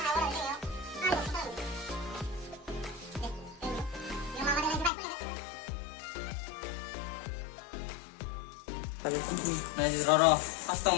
Này rồi custom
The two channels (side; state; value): right; drops out; at 4.9 s